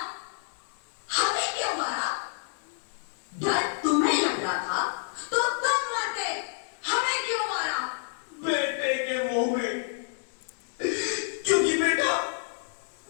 हमें क्यों मारा? डर तुम्हें लग रहा था तो तुम मरते, हमें क्यों मारा? बेटे के मुंह में, क्योंकि बेटा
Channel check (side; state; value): right; silent; digital silence